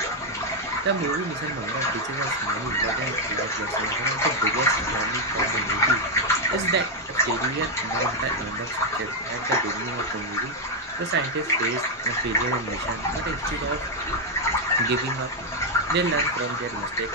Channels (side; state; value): both; normal; correlation 0.01